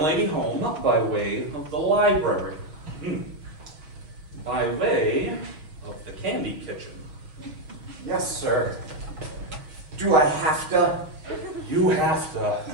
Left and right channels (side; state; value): left; late; 6.4 ms